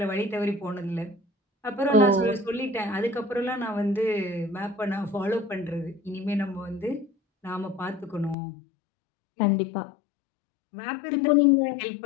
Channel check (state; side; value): drops out; right; at 8.3 s